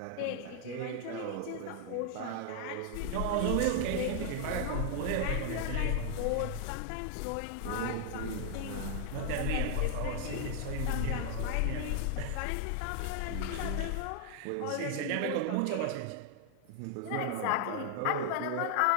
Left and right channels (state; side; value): different; both; correlation 0.00